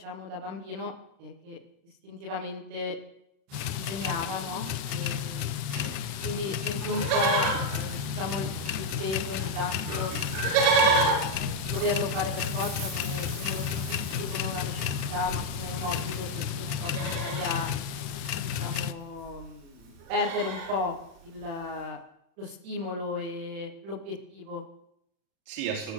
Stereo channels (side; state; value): left; late; 36 ms